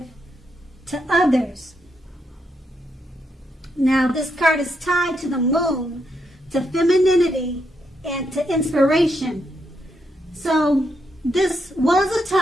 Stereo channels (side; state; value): both; normal; correlation 0.80